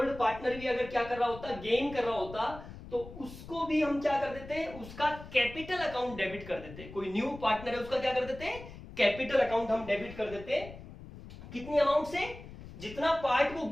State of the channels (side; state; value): left; noise; rumble, 14 dB below the sound